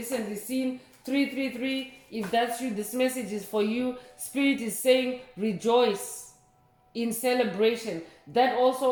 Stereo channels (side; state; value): both; identical; correlation 1.00